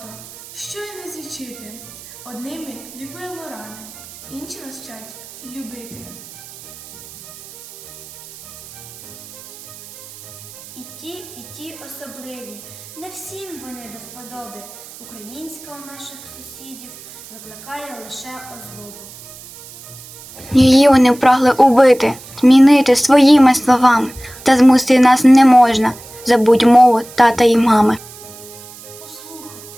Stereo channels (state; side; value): noise; right; hiss, 18 dB below the sound